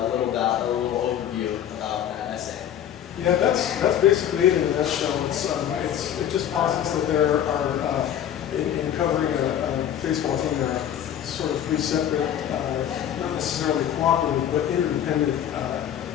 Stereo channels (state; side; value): quieter; right; 10.2 dB